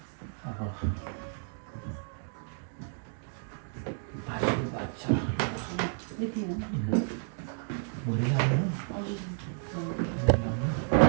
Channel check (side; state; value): left; silent; 57 dB below the other